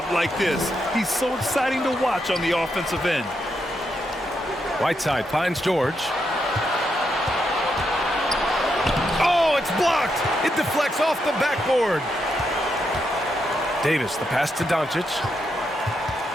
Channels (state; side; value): normal; both; correlation 0.81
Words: like this. He's so exciting to watch on the offensive end. Whiteside finds George. Oh, it's blocked. It deflects off the backboard. Davis, the pass to Doncic.